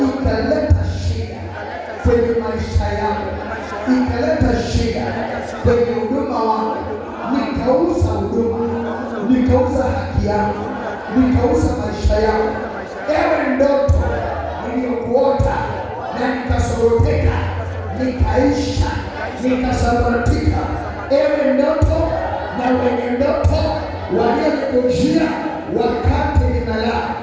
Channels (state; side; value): identical; both; correlation 1.00